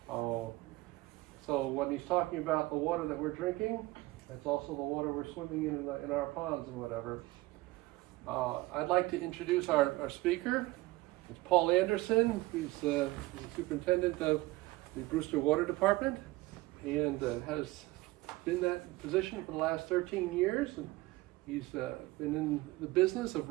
So when he's talking about the water that we're drinking, it's also the water we're swimming in our ponds and whatever. I'd like to introduce our speaker. It's Paul Anderson. He's the superintendent of the Brewster Water Department and has been in that position for the last 13 years. And he's been in the business of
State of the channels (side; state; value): left; quieter; 19.9 dB